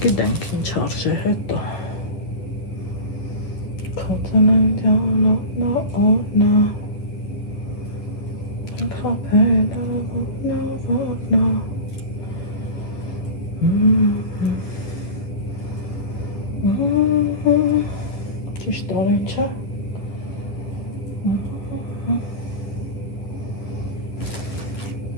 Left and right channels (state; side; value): late; right; 10 ms